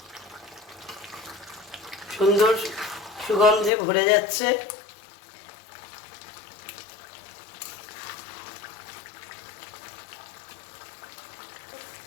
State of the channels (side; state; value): right; drops out; at 3.7 s